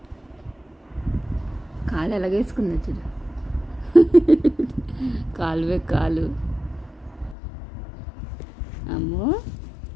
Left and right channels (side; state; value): right; drops out; at 7.4 s